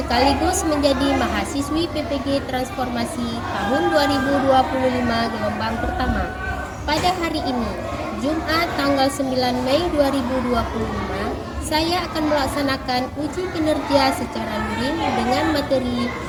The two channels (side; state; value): both; identical; correlation 1.00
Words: menjadi mahasiswi PPG Transformasi tahun 2025 gelombang pertama. Pada hari ini, Jumat tanggal 9 Mei 2025, saya akan melaksanakan uji kinerja secara luring dengan materi